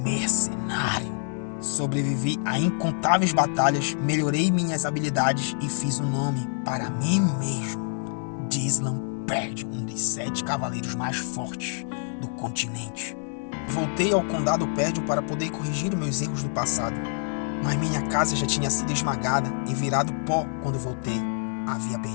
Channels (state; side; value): silent; right; 61 dB below the other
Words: mercenário. Sobrevivi a incontáveis batalhas, melhorei minhas habilidades e fiz um nome para mim mesmo. Dislan Perdion, um dos 7 cavaleiros mais fortes do continente. Voltei ao condado Perdion para poder corrigir meus erros do passado. Mas minha casa já tinha sido esmagada e virado pó quando voltei. Havia